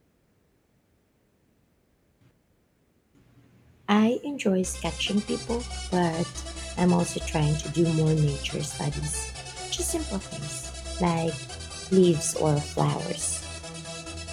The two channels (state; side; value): identical; both; correlation 1.00